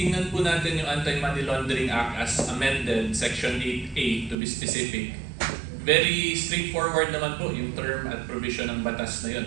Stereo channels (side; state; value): left; drops out; at 4.4 s